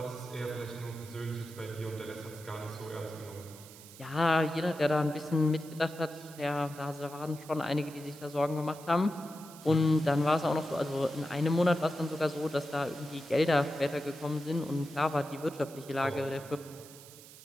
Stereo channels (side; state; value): right; noise; hiss, 18 dB below the sound